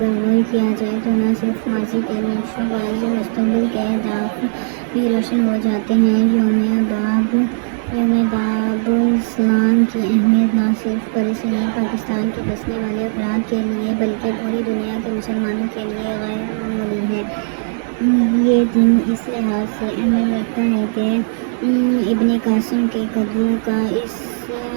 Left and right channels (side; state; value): left; silent; 67 dB below the other